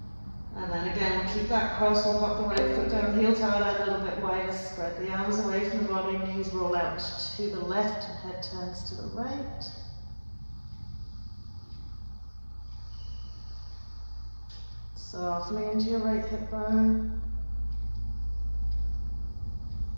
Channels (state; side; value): inverted; both; correlation -1.00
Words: And then again, we'll keep that cross, we'll pop the right foot down, heel toe out a little bit wider, spread the arms away from the body, knees roll out to the left, and head turns to the right. Softening into your right hip bone.